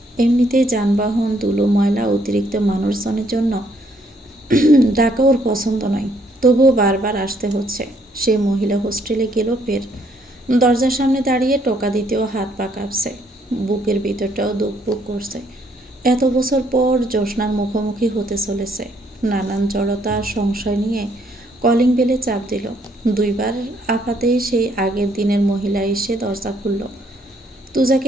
এমনিতেই যানবাহন, ধুলো, ময়লা, অতিরিক্ত মানুষজনের জন্য ঢাকা ওর পছন্দ নয়। তবুও বারবার আসতে হচ্ছে। সে মহিলা হোস্টেলে গেল ফের। দরজার সামনে দাঁড়িয়ে টোকা দিতেও হাত পা কাঁপছে। বুকের ভিতরটাও দুকপুক করছে। এত বছর পর জ্যোৎস্নার মুখোমুখি হতে চলেছে। নানান জড়তা সংশয় নিয়ে কলিং বেলে চাপ দিল। 2বার আপাতেই সেই আগের দিনের মহিলা এসে দরজা খুলল।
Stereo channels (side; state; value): both; normal; correlation 0.68